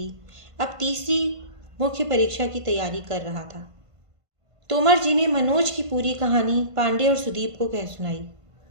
अब तीसरी मुख्य परीक्षा की तैयारी कर रहा था। तोमर जी ने मनोज की पूरी कहानी पांडे और सुदीप को कह सुनाई।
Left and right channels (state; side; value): late; left; 1.5 ms